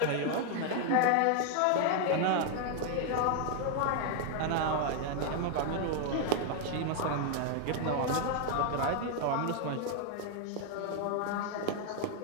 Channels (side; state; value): both; different; correlation 0.00